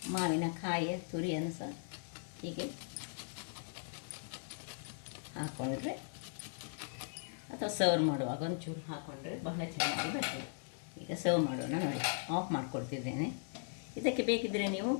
ಮಾವಿನಕಾಯಿಯ ತುರಿಯನ್ನು ಸಹ ಹೀಗೆ ಹಾಕ್ಕೊಂಡ್ರೆ, ಅಥವಾ ಸರ್ವ್ ಮಾಡುವಾಗ ಒಂಚೂರು ಹಾಕ್ಕೊಂಡ್ರೆ ಬಹಳ ಚೆನ್ನಾಗಿ ಬರ್ತದೆ. ಈಗ ಸರ್ವ್ ಮಾಡೋಣ ನೋಡಿ. ಆಫ್ ಮಾಡಿಕೊಡ್ತಿದ್ದೇನೆ. ಇದಕ್ಕೆ ಬೇಕಿದ್ದರೆ ನೀವು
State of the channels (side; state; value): right; silent; 52 dB below the other